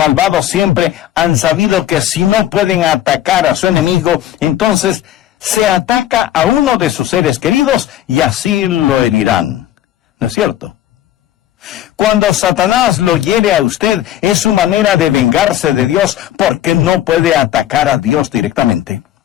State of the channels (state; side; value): quieter; right; 12.4 dB